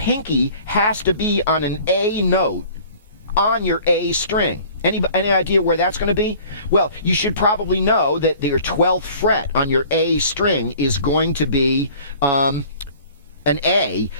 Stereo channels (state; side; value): inverted; both; correlation -0.49